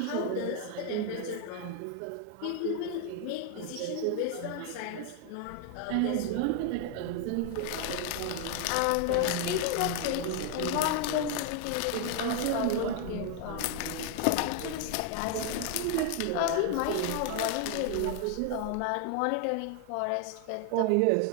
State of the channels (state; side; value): different; both; correlation 0.00